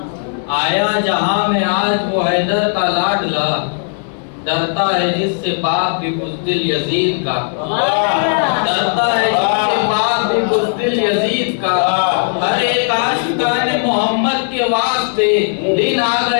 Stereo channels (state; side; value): silent; right; digital silence